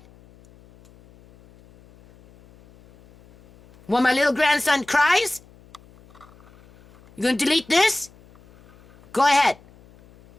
While my little grandson cries? You gonna delete this? Go ahead.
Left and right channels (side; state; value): left; noise; hum, 27 dB below the sound